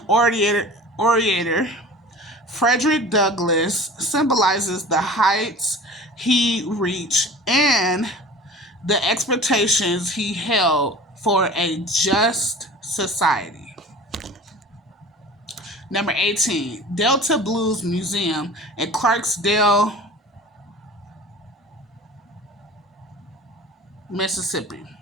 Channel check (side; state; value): both; normal; correlation 0.40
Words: orator Frederick Douglass symbolizes the heights he reached and the expectations he held for a just society. Number 18, Delta Blues Museum in Clarksdale, Mississippi.